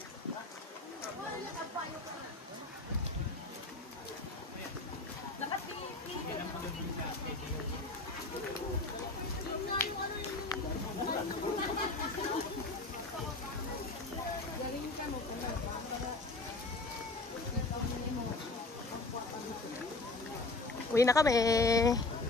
Uwi na kami.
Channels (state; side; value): quieter; right; 3.3 dB